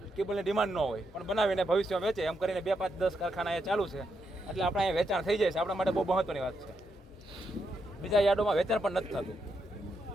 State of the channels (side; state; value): both; normal; correlation 0.81